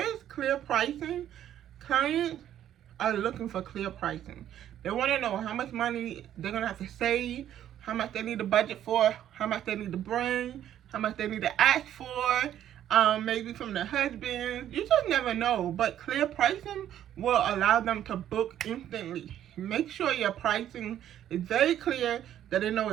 clear pricing, clients are looking for clear pricing. They want to know how much money they're going to have to save, how much they need to budget for, how much they need to bring, how much they need to ask for, maybe from their husband. You just never know. But clear pricing will allow them to book instantly. Make sure your pricing is very clear, that they know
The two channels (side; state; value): left; quieter; 11.1 dB